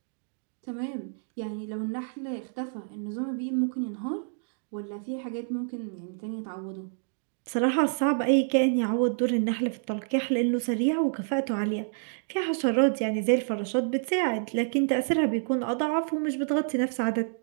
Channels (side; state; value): left; silent; digital silence